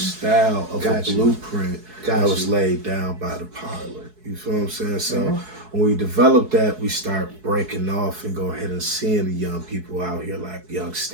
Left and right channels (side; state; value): left; late; 4.7 ms